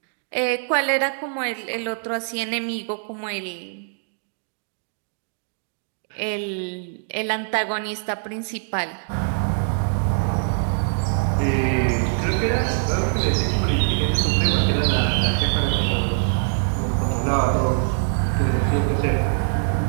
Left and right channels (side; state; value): left; silent; digital silence